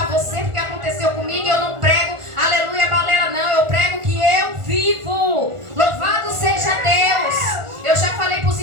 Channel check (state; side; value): late; left; 1.4 ms